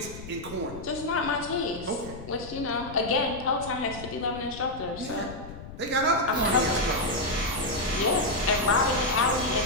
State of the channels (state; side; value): noise; left; rumble, 13 dB below the sound